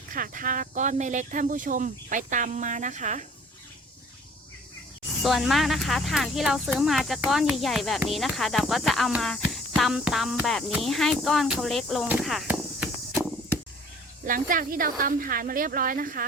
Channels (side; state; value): both; normal; correlation 0.53